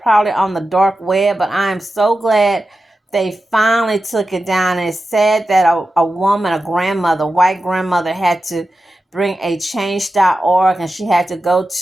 on the dark web, but I am so glad they finally took it down. And it said that a woman, a grandmother, white grandmother, had to bring a change.org, and she had to go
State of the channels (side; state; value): both; normal; correlation 0.92